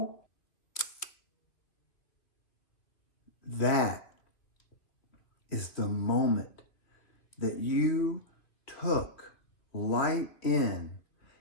That is the moment that you took light in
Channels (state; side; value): late; right; 2.4 ms